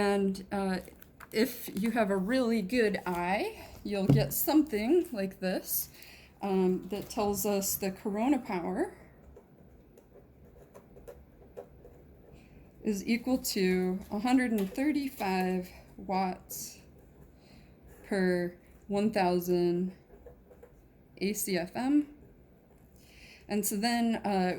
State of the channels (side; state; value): both; identical; correlation 1.00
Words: if you have a really good eye, you'll get something like this that tells us the corona power is equal to 135 watts per 1,000 ACFM. And so then